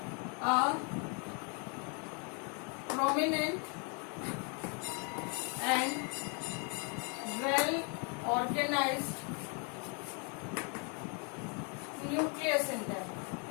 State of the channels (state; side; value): quieter; right; 37.1 dB